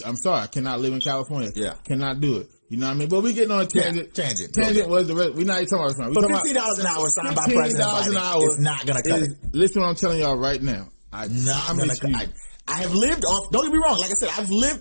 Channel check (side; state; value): both; inverted; correlation -1.00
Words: sorry. I cannot live in California. Yeah. Cannot do it. You know what I mean? But we getting on a tangent. Yeah, Tangent was the rest. We're not even talking about this. But $15 an hour signed by President Biden is not going to cut it. Listen what I'm telling y'all right now. I have lived off, don't get me wrong, like I said, I've